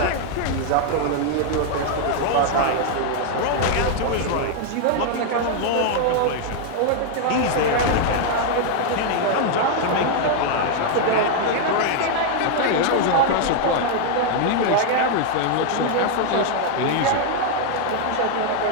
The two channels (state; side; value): different; both; correlation 0.00